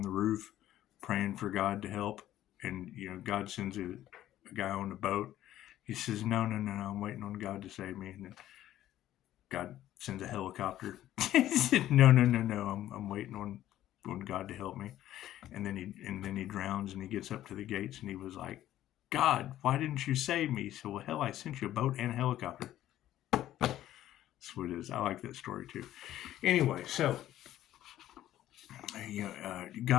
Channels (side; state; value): right; quieter; 13.1 dB